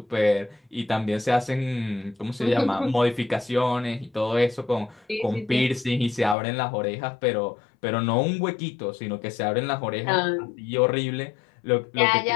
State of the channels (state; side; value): drops out; right; at 6.4 s